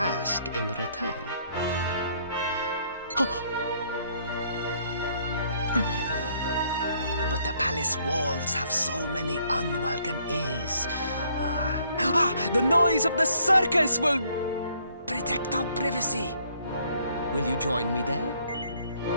in return. But the palace walls have so many unwelcome ears. The noise of the circus will protect our privacy. Will you join me there?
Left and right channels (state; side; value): inverted; both; correlation -0.66